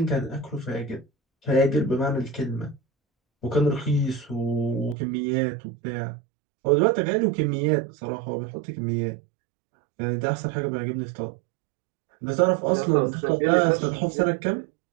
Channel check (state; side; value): drops out; left; at 5.0 s